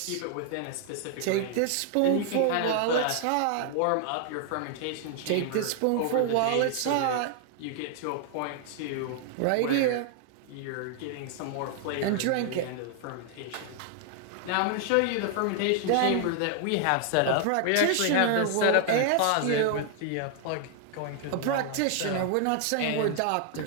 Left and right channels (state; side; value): different; both; correlation 0.00